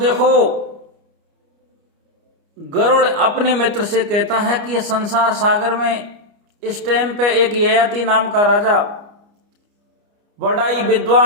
गरुड़ अपने मित्र से कहता है कि यह संसार सागर में इस टाइम पे एक ययाति नाम का राजा, बड़ा ही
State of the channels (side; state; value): left; late; 29 ms